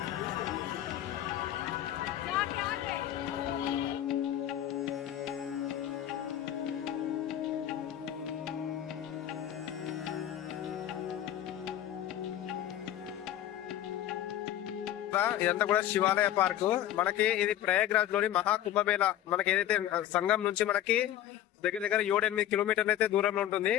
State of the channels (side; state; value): right; quieter; 11.9 dB